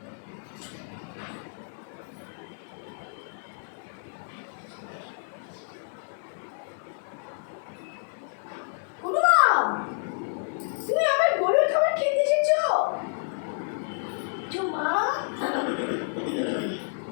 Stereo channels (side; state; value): right; silent; digital silence